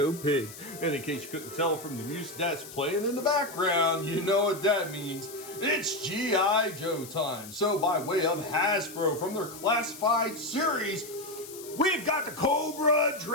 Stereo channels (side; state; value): left; noise; hiss, 15 dB below the sound